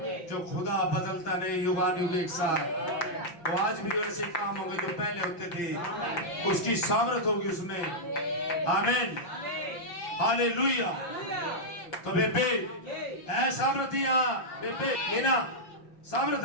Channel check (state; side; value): late; right; 5.8 ms